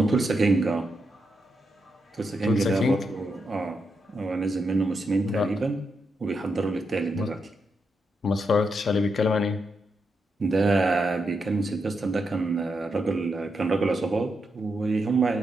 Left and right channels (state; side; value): normal; both; correlation 0.83